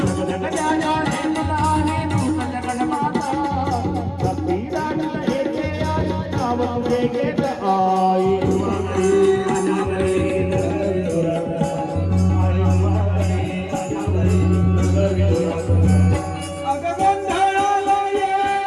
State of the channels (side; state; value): both; identical; correlation 1.00